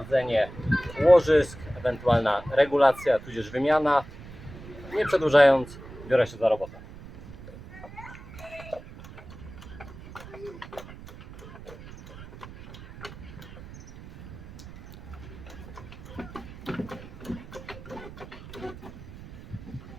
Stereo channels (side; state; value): right; noise; rumble, 15 dB below the sound